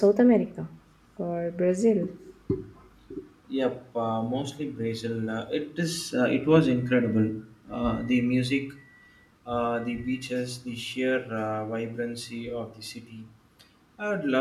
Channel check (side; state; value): both; identical; correlation 1.00